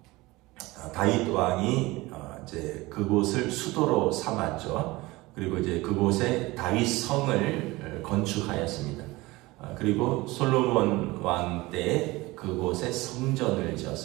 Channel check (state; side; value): quieter; left; 21.0 dB